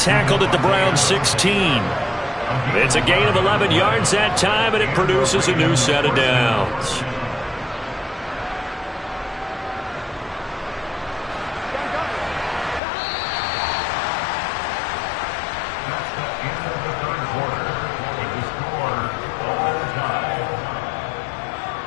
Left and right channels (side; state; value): right; drops out; at 12.8 s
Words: at the Browns' 16. It's a gain of 11 yards that time, and it produces a new set of downs. That's the end of the third quarter with the score all time.